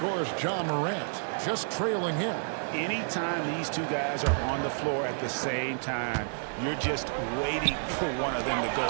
John Morant just trailing him. Anytime these two guys are on the floor at the same time, you're just waiting for one of them to go,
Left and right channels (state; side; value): silent; left; 58 dB below the other